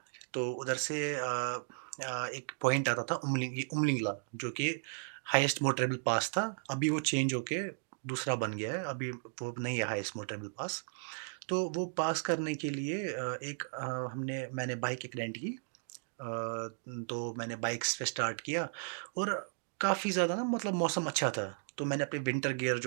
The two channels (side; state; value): left; silent; digital silence